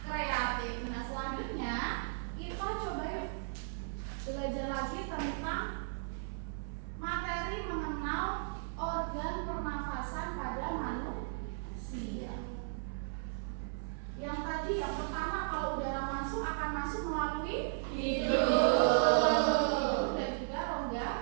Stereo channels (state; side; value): silent; left; 54 dB below the other